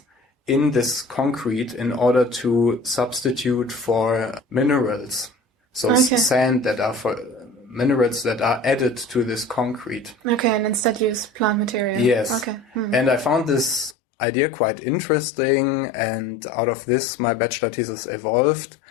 in this concrete in order to substitute for minerals. So sand that are for minerals that are added to this concrete. Okay, and instead use plant material. Yes. Okay. And I found this idea quite interesting, and out of this my bachelor thesis evolved.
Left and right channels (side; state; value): right; drops out; at 14.0 s